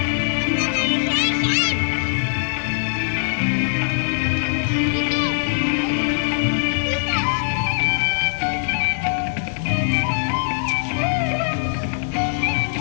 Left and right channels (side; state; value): right; silent; digital silence